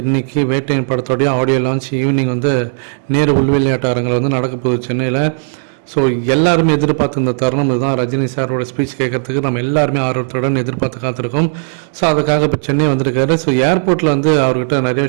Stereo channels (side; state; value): left; silent; digital silence